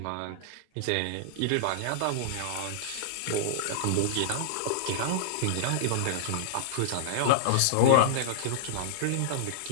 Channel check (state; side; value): different; both; correlation -0.02